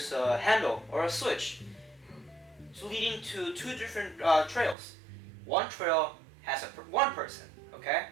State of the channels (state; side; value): drops out; left; at 4.8 s